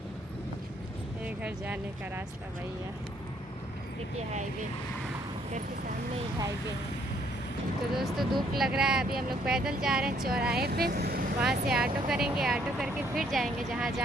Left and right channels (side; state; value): both; normal; correlation 0.67